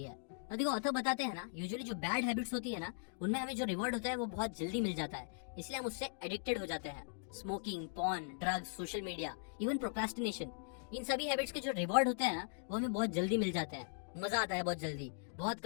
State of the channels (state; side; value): silent; right; digital silence